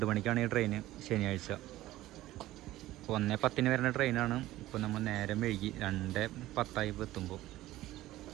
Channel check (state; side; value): quieter; left; 16.0 dB